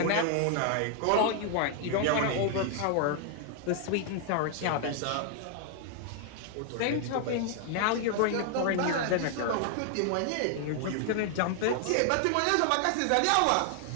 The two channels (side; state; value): both; different; correlation 0.00